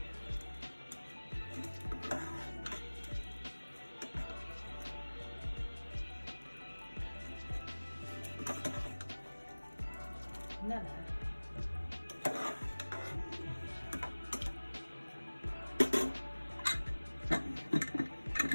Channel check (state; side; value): inverted; both; correlation -1.00